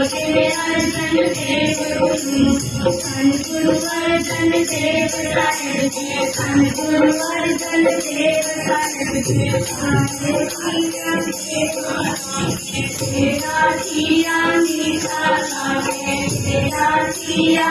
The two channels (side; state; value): both; identical; correlation 1.00